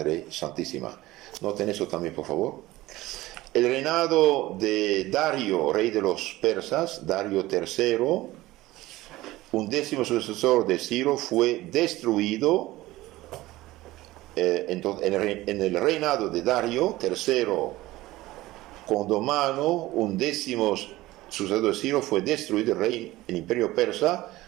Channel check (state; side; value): quieter; left; 17.8 dB